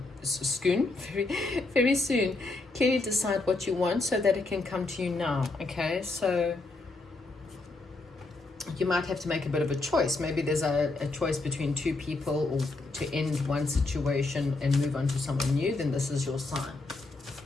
very soon. Clearly decide what you want so that it can come to you now, okay? So you might have to make a bit of a choice. Maybe there's a choice between two people, or to end one situation and move on to someone new, then this is your sign.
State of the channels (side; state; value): right; quieter; 3.3 dB